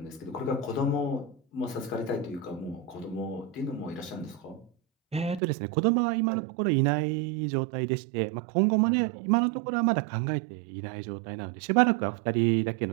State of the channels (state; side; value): drops out; left; at 5.4 s